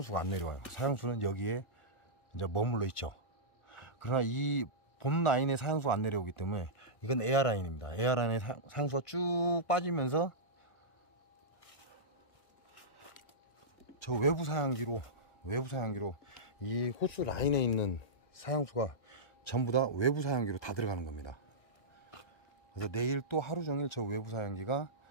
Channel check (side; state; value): right; late; 1.6 ms